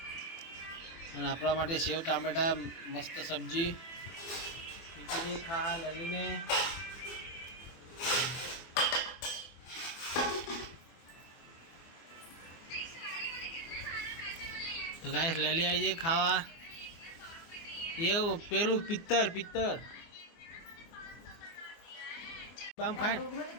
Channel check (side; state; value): right; late; 24 ms